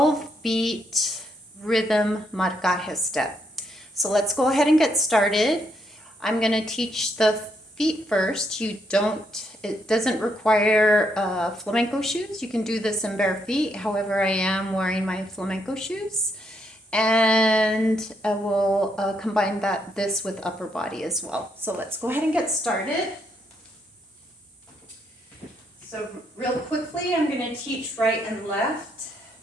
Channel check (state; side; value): normal; both; correlation 0.76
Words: rhythm marcaje step. So let's go ahead and get started. I'm going to teach the feet first. It doesn't require flamenco shoes. You can do this in bare feet. However, I am wearing my flamenco shoes. And I will combine this with upper body as well. So let's go ahead and get started. So real quickly, I'm going to teach right and left.